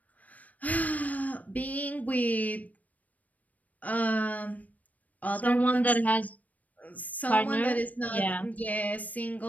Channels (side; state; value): right; late; 0.073 ms